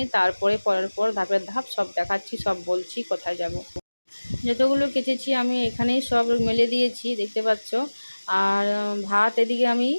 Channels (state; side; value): inverted; both; correlation -1.00